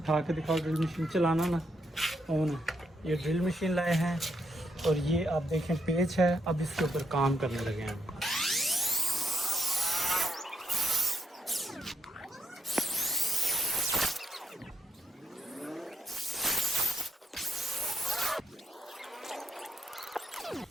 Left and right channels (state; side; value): normal; both; correlation 0.78